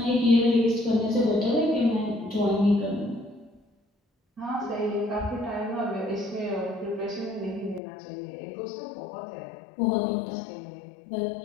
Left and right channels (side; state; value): right; drops out; at 7.8 s